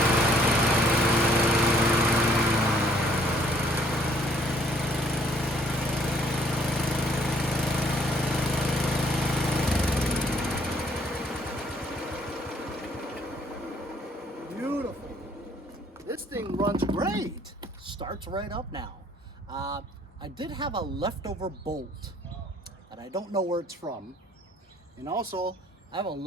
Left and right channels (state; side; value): normal; both; correlation 0.62